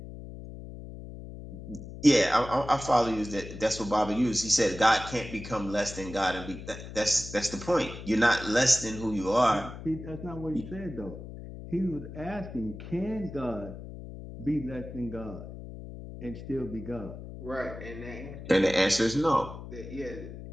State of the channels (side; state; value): left; noise; hum, 12 dB below the sound